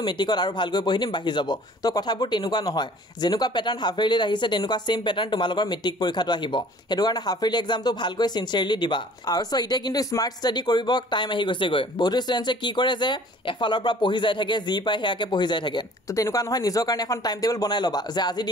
মেট্ৰিকত আৰু ভালকৈ পঢ়ি দিম বাঢ়ি যাব তো কথাবোৰ তেনেকুৱা নহয় যেনেকুৱা পেটাৰ্ণ হাফ ইয়াৰলিত আহিছে তেনেকুৱা ছেইম পেটাৰ্ণ তোমালোকৰ মেট্ৰিক পৰীক্ষাটো আহিব সেইটো কাৰণে হাফ ইয়াৰলি এক্সামটো ভালকৈ চিনচিয়াৰলি দিবা আৰু চ' এতিয়া কিন্তু স্মাৰ্ট ষ্টাডি কৰিব টাইম আহি গৈছেগৈ বহুতো ষ্টুডেণ্টছে কি কৰে যে এফালৰ পৰা পঢ়ি যাই থাকে যি পায় সেয়াকে পঢ়ি যাই থাকে তো তেনেকুৱা নহয় নিজৰ কাৰণে এখন টাইম টেবল বনাই ল'বা যে আজি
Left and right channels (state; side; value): normal; both; correlation 0.51